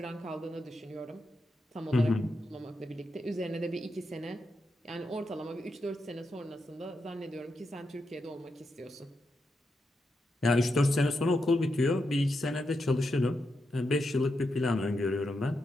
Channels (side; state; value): both; normal; correlation 0.85